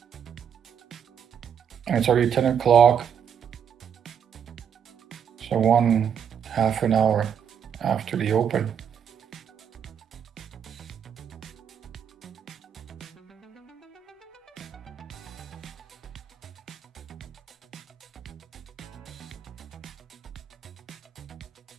And it's already 10 o'clock. So 1/2 an hour after the open.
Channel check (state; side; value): quieter; left; 8.1 dB